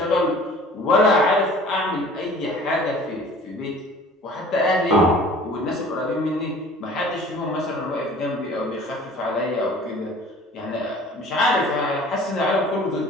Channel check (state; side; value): normal; both; correlation 0.47